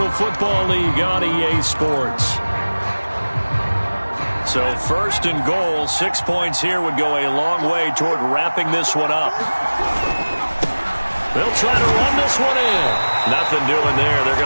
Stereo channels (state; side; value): inverted; both; correlation -1.00